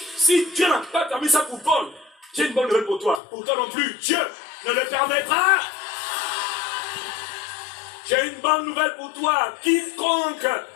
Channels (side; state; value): right; drops out; at 3.2 s